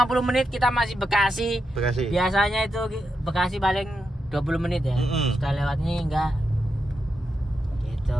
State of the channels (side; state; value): both; normal; correlation 0.86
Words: menit kita masih Bekasi. Biasanya itu Bekasi paling 20 menit ya. Sudah lewat ini enggak. Gitu.